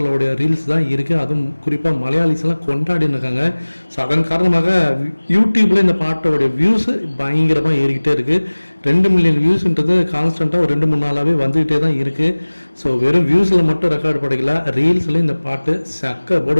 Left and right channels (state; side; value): inverted; both; correlation -1.00